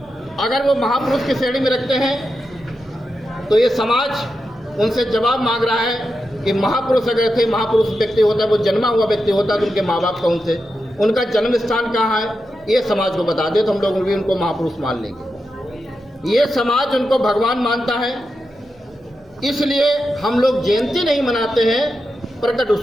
अगर वो महापुरुष की श्रेणी में रखते हैं तो ये समाज उनसे जवाब मांग रहा है कि महापुरुष अगर थे, महापुरुष व्यक्ति होता है, वो जन्मा हुआ व्यक्ति होता है तो उनके माँ बाप कौन थे, उनका जन्म स्थान कहाँ है, ये समाज को बता दे तो हम लोग भी उनको महापुरुष मान लेंगे। ये समाज उनको भगवान मानता है, इसलिए हम लोग जयंती नहीं मनाते हैं, प्रकट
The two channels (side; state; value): both; normal; correlation 0.88